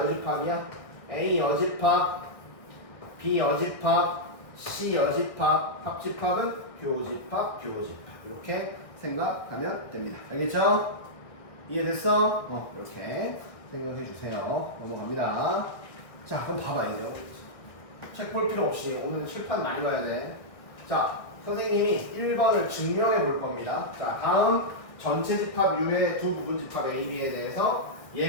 A 여집합, B 여집합, C 여집합, 합집합은 교집합, 교집합. 이렇게 생각하면 됩니다. 알겠죠? 이해됐어? 이렇게 생각해 주세요. 넘어갑니다. 자, 그럼 봐봐, 이제. 책 볼 필요 없이 오늘 칠판 많이 봐야 돼. 자, 선생님이 1번을 증명해 볼 겁니다. 자, 다음 전체 집합 U의 두 부분 집합 A, B에 대해서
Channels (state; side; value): late; right; 1.6 ms